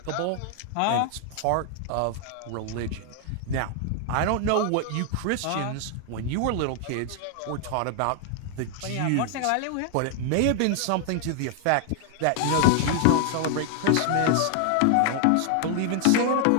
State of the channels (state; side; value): different; both; correlation 0.00